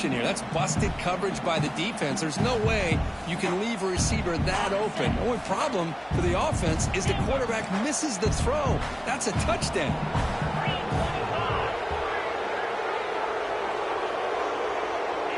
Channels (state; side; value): identical; both; correlation 1.00